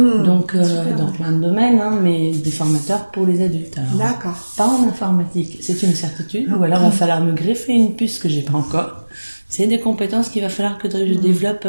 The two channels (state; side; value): inverted; both; correlation -1.00